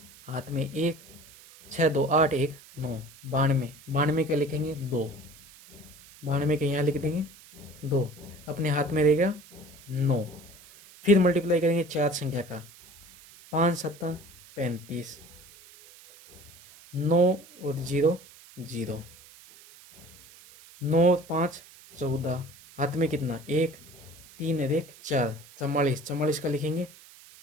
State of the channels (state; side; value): noise; right; hiss, 22 dB below the sound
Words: हाथ में 1, 6 2 8 1 9, 92, 92 का लिखेंगे 2, 92 के यहाँ लिख देंगे 2, अपने हाथ में रहेगा 9। फिर मल्टीप्लाई करेंगे 4 संख्या का, 5 7 35, 9 और 0 0, 9 5 14, हाथ में कितना 1, 3 और 1 4, 44, 44 का लिखेंगे